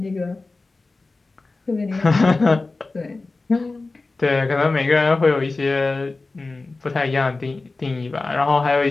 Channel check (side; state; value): right; quieter; 3.5 dB